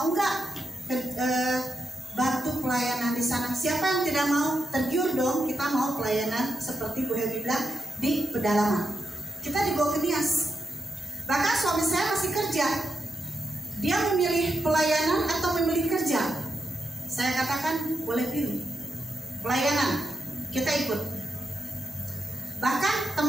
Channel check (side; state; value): both; normal; correlation 0.85